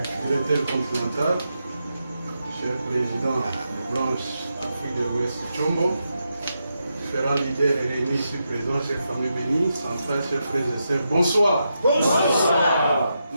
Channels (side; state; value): both; inverted; correlation -0.85